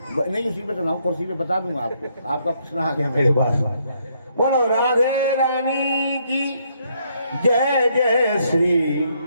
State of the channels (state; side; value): inverted; both; correlation -0.72